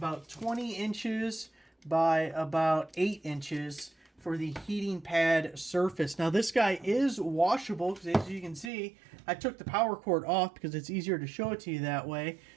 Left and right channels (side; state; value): left; drops out; at 8.7 s